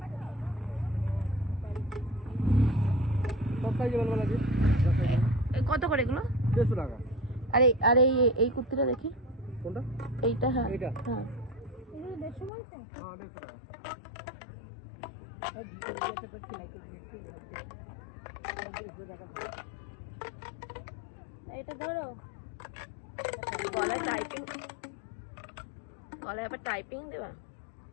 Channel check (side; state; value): right; drops out; at 12.5 s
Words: কত করে এগুলো? 150 টাকা। আরে আরে এই কুর্তিটা দেখি। কোনটা? এইটা। হ্যাঁ এইটা। হ্যাঁ, এগুলো 150 বলছেন? হ্যাঁ 150 টাকা। এইটা ধরো। গলায় টাইপিং, গলায় আবার টাইপিং দেবা।